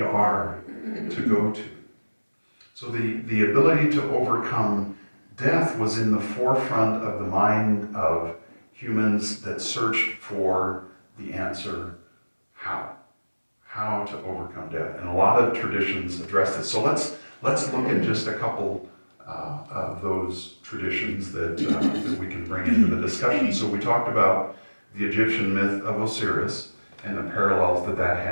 to go to. So the ability to overcome death was in the forefront of the mind of humans that searched for the answer, how to overcome death. And a lot of traditions address this. So let's look at just a couple of those traditions that we can bring into the discussion. So we talked about the Egyptian myth of Osiris and the parallels that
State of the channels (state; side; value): inverted; both; correlation -1.00